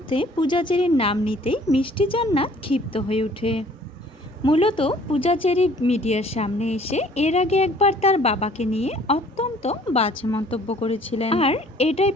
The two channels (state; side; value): normal; both; correlation 0.55